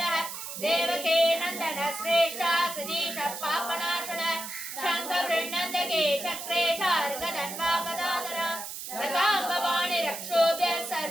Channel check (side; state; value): right; noise; hiss, 8 dB below the sound